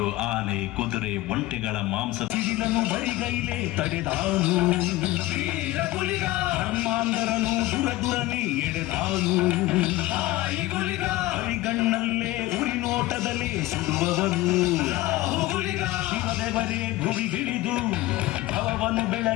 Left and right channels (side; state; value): right; quieter; 17.3 dB